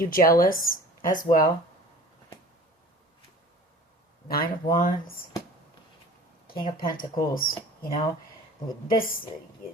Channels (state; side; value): normal; both; correlation 0.44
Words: jealous as well. Nine of Wands, King of Pentacles. You know, this,